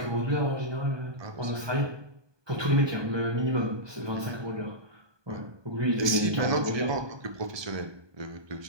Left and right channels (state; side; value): late; left; 1.2 ms